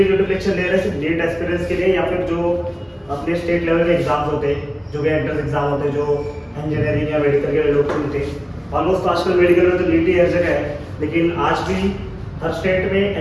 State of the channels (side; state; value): both; identical; correlation 1.00